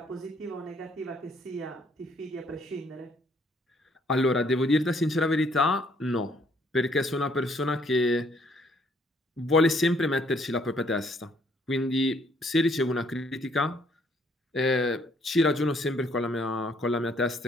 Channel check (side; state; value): both; normal; correlation 0.66